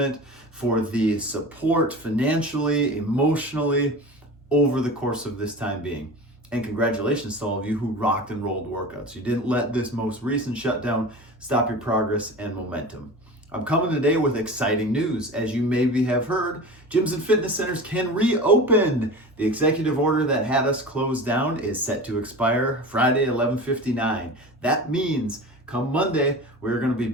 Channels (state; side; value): normal; both; correlation 0.33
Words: for the support financially, emotionally, over the course of this time being. And congratulations to all of you who rocked and rolled workouts. You didn't let this most recent shutdown stop your progress and momentum. I'm coming today with exciting news. As you maybe have heard, gyms and fitness centers can reopen. The executive order that had us closed down is set to expire Friday, 11/59. That means come Monday, we're going to be